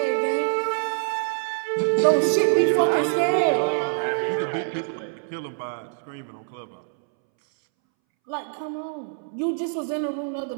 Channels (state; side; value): silent; left; 62 dB below the other